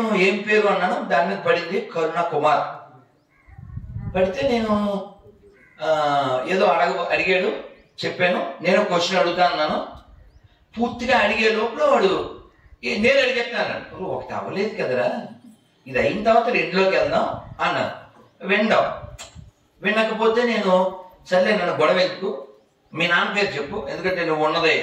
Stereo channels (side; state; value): both; identical; correlation 1.00